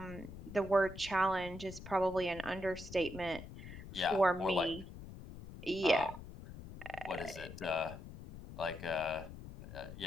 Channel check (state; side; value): noise; left; rumble, 13 dB below the sound